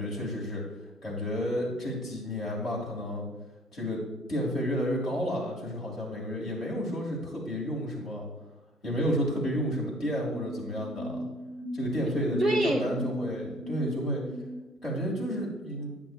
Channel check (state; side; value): normal; both; correlation 0.53